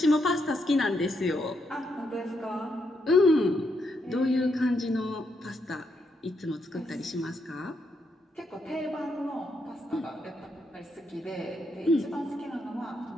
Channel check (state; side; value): normal; both; correlation 0.79